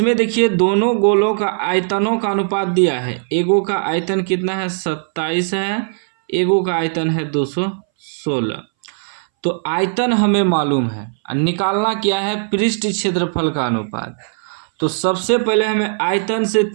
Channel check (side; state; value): left; silent; 64 dB below the other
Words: देखिए दोनों गोलों का आयतनों का अनुपात दिया है। एगो का आयतन कितना है 27 है, एगो का आयतन है 216। तो आयतन हमें मालूम है, निकालना क्या है पृष्ठ क्षेत्रफल का अनुपात। तो सबसे पहले हमें आयतन से